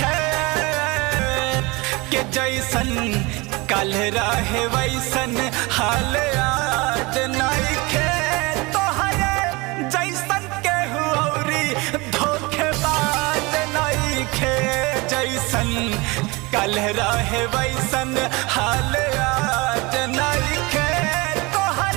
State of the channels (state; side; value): quieter; left; 24.9 dB